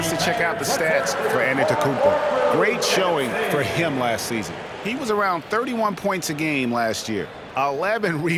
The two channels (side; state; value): both; identical; correlation 1.00